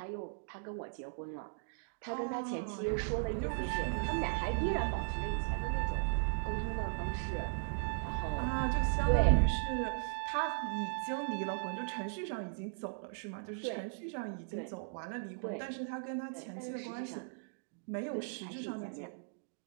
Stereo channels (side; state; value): left; silent; digital silence